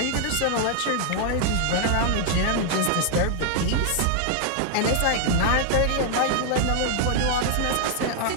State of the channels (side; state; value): both; different; correlation 0.00